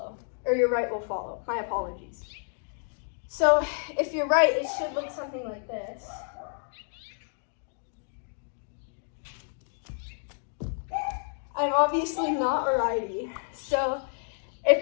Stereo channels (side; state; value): right; silent; digital silence